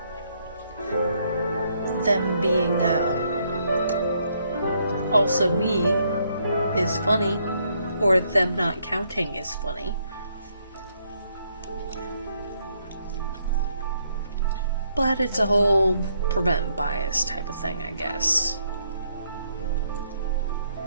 them being also me is funny, or them not counting is funny. But it's a whole prevent bias type of thing, I guess.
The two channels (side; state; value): both; inverted; correlation -0.72